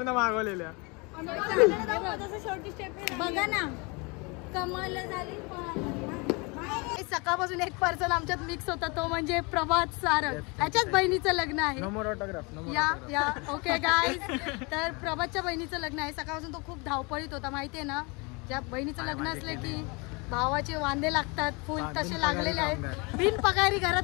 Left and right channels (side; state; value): right; quieter; 29.1 dB